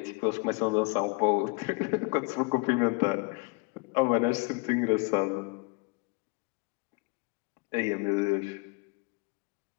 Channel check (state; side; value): quieter; right; 27.7 dB